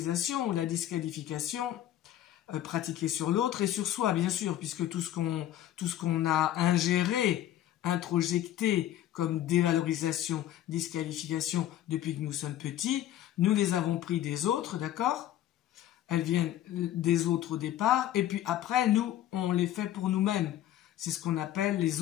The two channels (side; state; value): right; quieter; 12.4 dB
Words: la disqualification, pratiquée sur l'autre et sur soi, bien sûr, puisque tout ce qu'on a ingéré, introjecté comme dévalorisation, disqualification depuis que nous sommes petits, nous les avons pris des autres, d'accord? Elles viennent des autres au départ, et puis après, nous, on les fait pour nous-mêmes. C'est ce qu'on appelle les